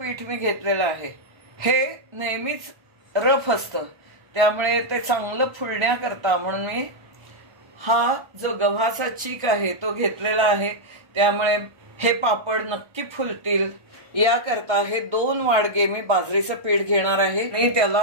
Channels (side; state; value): left; late; 1.3 ms